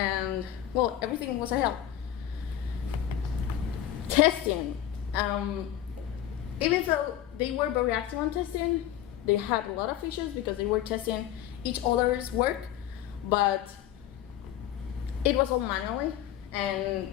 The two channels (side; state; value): right; quieter; 11.6 dB